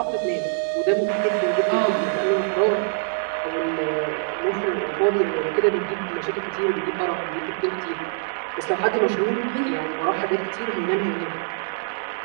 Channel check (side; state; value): left; silent; 63 dB below the other